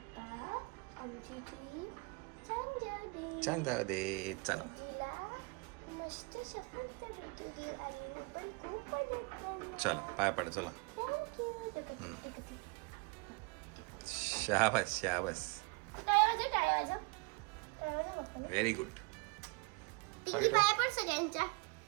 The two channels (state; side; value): quieter; left; 29.9 dB